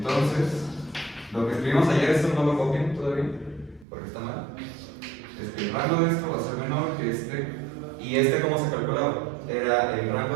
lo que escribimos ayer, esto no lo copien todavía, porque está mal. El rango de esto va a ser menor que este. ¿Y este cómo se calculaba? Era el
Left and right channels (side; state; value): left; drops out; at 3.9 s